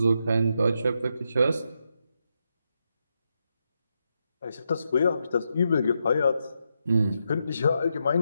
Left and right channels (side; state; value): both; inverted; correlation -0.84